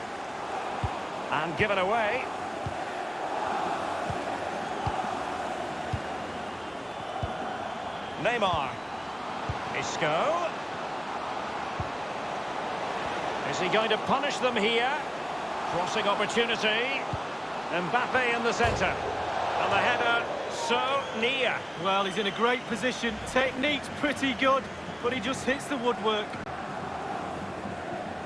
And given away. Neymar. Isco. Is he going to punish them here? Crossing opportunity. Mbappe in the centre. And the header so near. Well, he's in a great position. Technique's pretty good, but he just hits the woodwork.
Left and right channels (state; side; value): identical; both; correlation 1.00